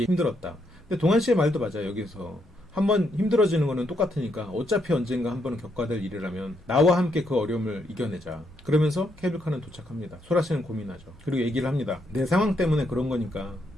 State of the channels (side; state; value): both; normal; correlation 0.77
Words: 힘들었다. 근데 동환 씨의 말도 맞아요. 여기서 한번 힘들어지는 거는 똑같으니까 어차피 언젠가 한 번은 겪어야 될 일이라면 나와 함께 그 어려움을 이겨내자. 그러면서 케이블카는 도착합니다. 소라 씨는 고민하죠. 그리고 얘기를 합니다. 내 상황 때문에 그런 거니까